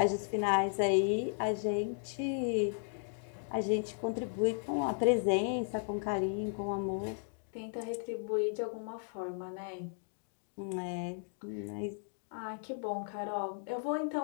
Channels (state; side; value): silent; right; digital silence